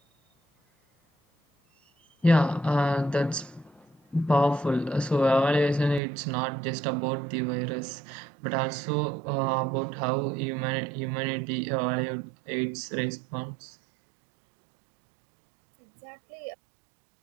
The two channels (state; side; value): drops out; left; at 6.0 s